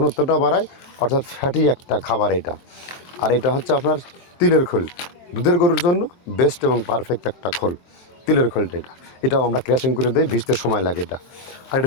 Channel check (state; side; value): late; right; 23 ms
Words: বাড়ায়, অর্থাৎ ফ্যাটি একটা খাবার এটা। আর এটা হচ্ছে আপনার তিলের খোল, দুধের গরুর জন্য বেস্ট এবং পারফেক্ট একটা খোল, তিলের খোলটা। এটাও আমরা ক্র্যাশিং করে দিই, ভিজতে সময় লাগে এটা। আর এটা